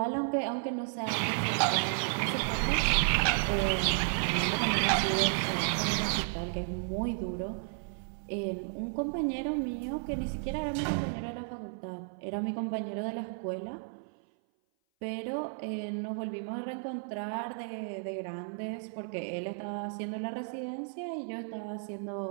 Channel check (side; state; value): left; silent; 56 dB below the other